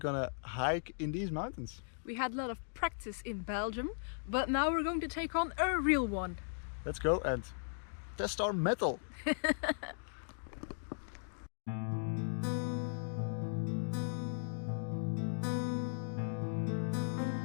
hike in these mountains. We had a lot of practice in Belgium, but now we're going to take on a real one. Let's go and test our metal.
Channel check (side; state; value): right; silent; digital silence